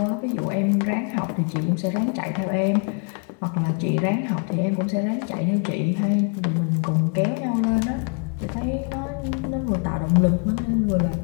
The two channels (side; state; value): right; quieter; 38.0 dB